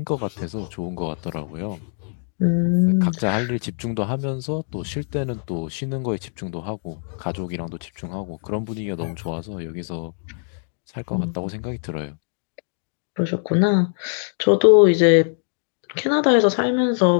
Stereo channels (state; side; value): silent; right; digital silence